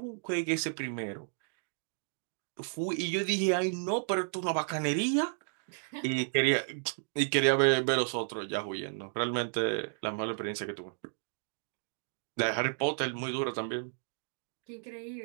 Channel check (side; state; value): left; silent; digital silence